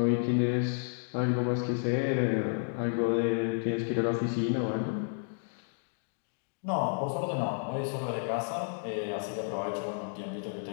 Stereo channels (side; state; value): right; silent; digital silence